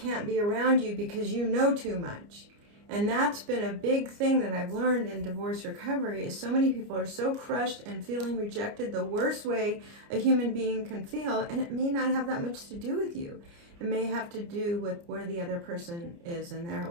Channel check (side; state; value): left; late; 29 ms